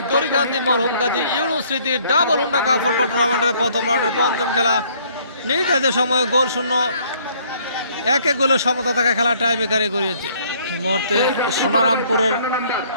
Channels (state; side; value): inverted; both; correlation -0.62